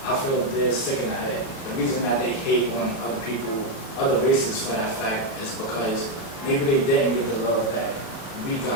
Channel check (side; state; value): right; late; 37 ms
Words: I feel they're sick in the head. The reason that they hate on other people, other races for that fact, is because maybe they didn't get the love that we